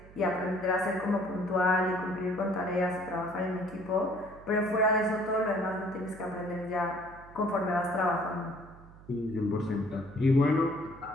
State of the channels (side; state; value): right; noise; hum, 20 dB below the sound